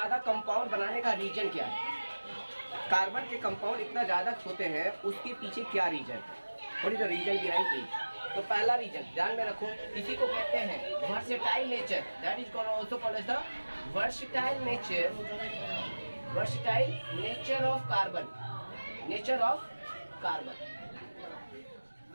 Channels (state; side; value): inverted; both; correlation -1.00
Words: compound बनाने का रीजन क्या है। कार्बन के कंपाउंड इतना ज्यादा होते हैं, उसके पीछे क्या रीजन है? What is the reason behind it? तो पहला रीजन ध्यान में रखो, इसी को कहते हैं versatile nature. That is also called as the versatile nature of carbon.